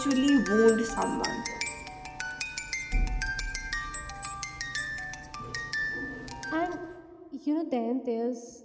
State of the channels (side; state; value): both; identical; correlation 1.00